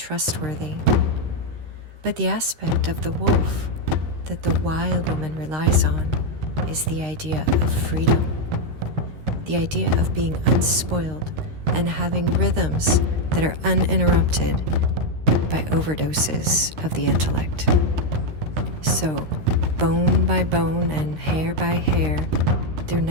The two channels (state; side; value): late; left; 13 ms